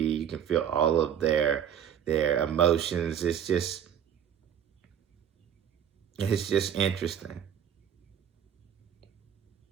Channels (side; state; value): left; quieter; 9.1 dB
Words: can feel all of their emotions. It's just interesting.